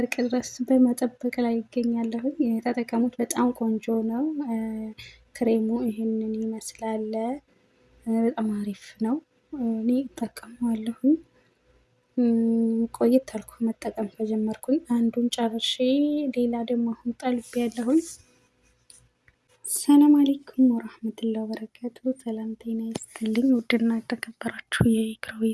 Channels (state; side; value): identical; both; correlation 1.00